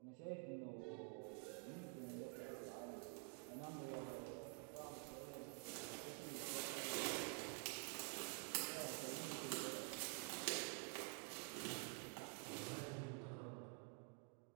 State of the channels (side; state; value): left; quieter; 32.7 dB